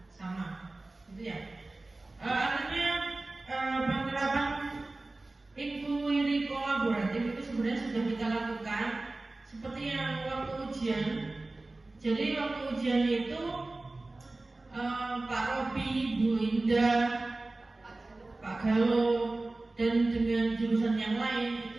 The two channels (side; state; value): left; quieter; 3.0 dB